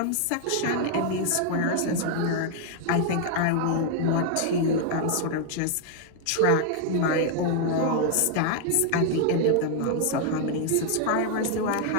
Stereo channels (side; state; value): both; different; correlation 0.00